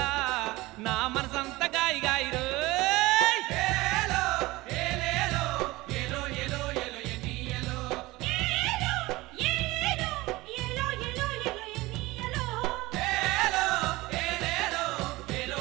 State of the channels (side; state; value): left; quieter; 20.2 dB